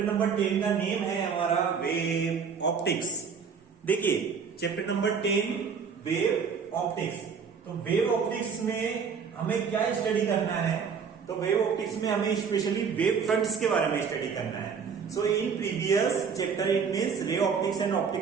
नंबर 10 का नेम है हमारा वेव ऑप्टिक्स। देखिए चैप्टर नंबर 10 वेव ऑप्टिक्स। तो वेव ऑप्टिक्स में हमें क्या स्टडी करना है? तो वेव ऑप्टिक्स में हमें स्पेशली वेव फ्रंट्स के बारे में स्टडी करना है। So in previous chapter it means ray optics and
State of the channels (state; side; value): quieter; left; 6.2 dB